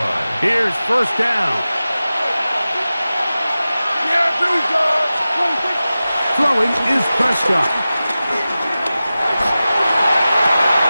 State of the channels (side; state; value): both; inverted; correlation -0.95